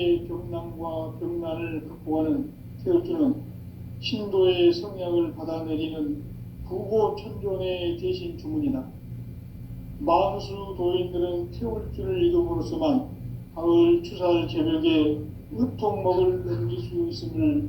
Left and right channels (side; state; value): both; identical; correlation 1.00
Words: 병난과 병난을 극복하는 태울주는 신도의 성향을 받아내리는 구고천존의 대신 주문이다. 만수 도인들은 태울주를 읽음으로써만 가을 추살 개벽에 의통목을 넘길 수 있음을